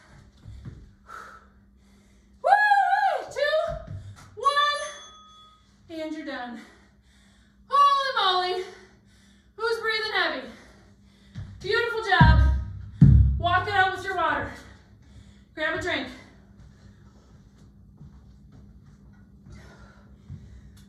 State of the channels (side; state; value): both; identical; correlation 1.00